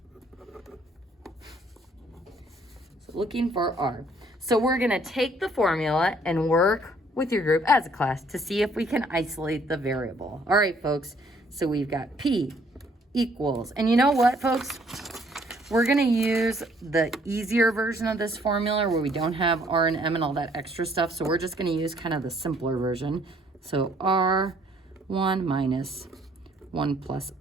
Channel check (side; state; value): both; normal; correlation 0.63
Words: So looking for R. So we're going to take the formula and work with your group as a class to see if we can isolate the variable. All right, folks. So we've got P equals, and you know what, folks? We're going to use the easier version of this formula where we don't have R and M and all that extra stuff. So we're just going to use kind of the simpler version. So R1 minus 1 plus